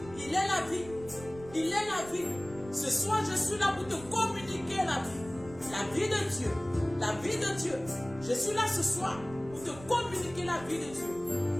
Il est la vie. Il est la vie. Ce soir, je suis là pour te communiquer la vie. La vie de Dieu. La vie de Dieu. Je suis là ce soir pour te communiquer la vie de Dieu.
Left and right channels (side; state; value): right; noise; rumble, 17 dB below the sound